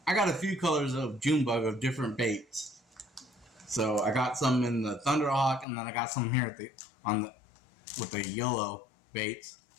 I got a few colors of June bug of different baits. So I got some in the Thunderhawk, and then I got some here with the yellow baits.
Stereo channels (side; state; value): right; drops out; at 5.7 s